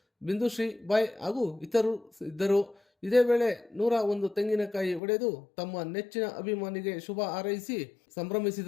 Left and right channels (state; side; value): drops out; right; at 5.0 s